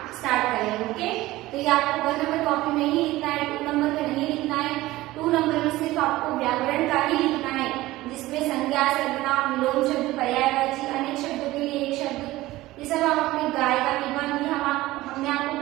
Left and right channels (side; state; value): left; quieter; 17.7 dB